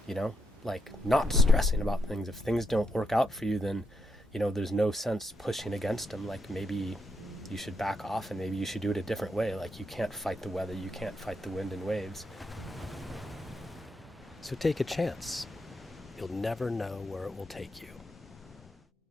you know, like not stressing about things. If things don't work out for you, then, you know, there's no sense pushing against them. Like, maybe you should back off and maybe you should do it a different way. Like, you can't fight the weather, you can't fight the wind and waves. So take a chance. You'll never know where it will take you.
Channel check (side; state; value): both; normal; correlation 0.81